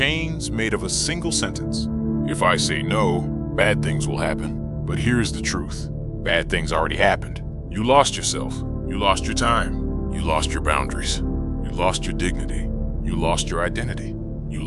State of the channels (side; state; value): both; identical; correlation 1.00